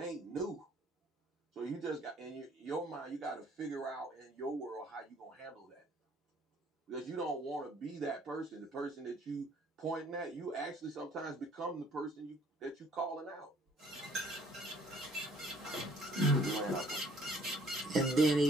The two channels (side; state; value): both; normal; correlation 0.59